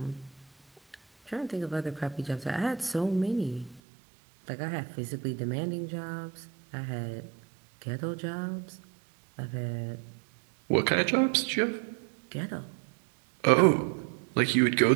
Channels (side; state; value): left; drops out; at 3.8 s